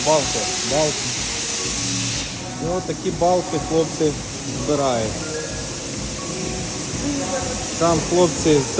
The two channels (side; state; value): both; identical; correlation 1.00